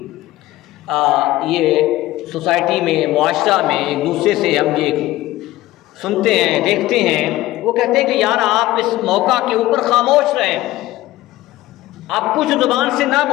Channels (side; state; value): right; quieter; 16.6 dB